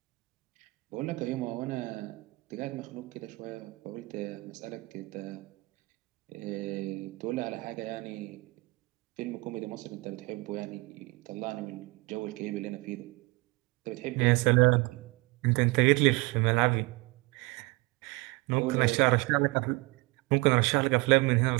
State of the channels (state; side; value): quieter; left; 24.7 dB